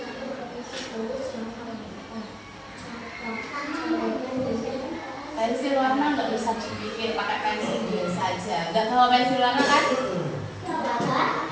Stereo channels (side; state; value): both; identical; correlation 1.00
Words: Pensil warna nggak bisa dibikin pakai pensil biasa aja. Nggak tahu pensil warna kan?